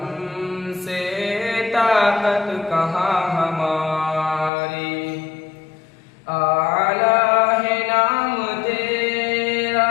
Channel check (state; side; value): drops out; right; at 4.5 s